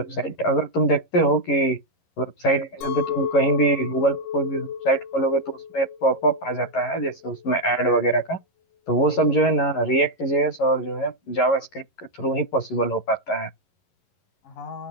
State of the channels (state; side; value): late; right; 11 ms